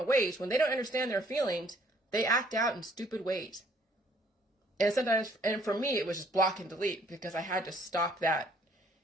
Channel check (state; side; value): normal; both; correlation 0.62